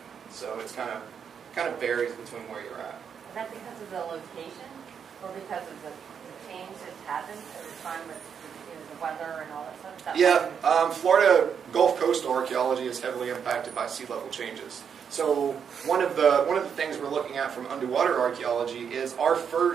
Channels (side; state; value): left; quieter; 7.3 dB